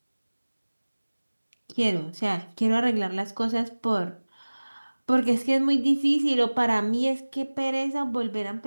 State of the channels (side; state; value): both; inverted; correlation -1.00